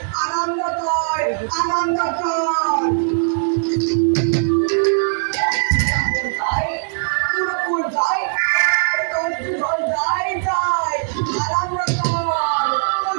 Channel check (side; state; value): left; silent; digital silence